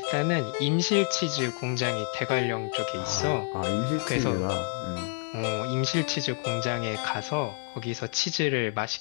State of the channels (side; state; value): right; silent; 59 dB below the other